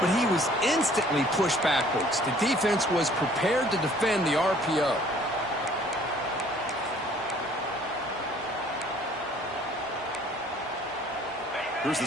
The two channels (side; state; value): both; normal; correlation 0.56